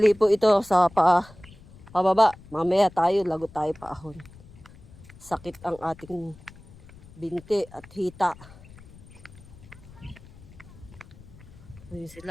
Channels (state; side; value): noise; left; rumble, 21 dB below the sound